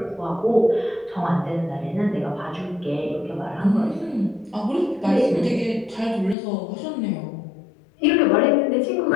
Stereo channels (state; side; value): drops out; right; at 6.4 s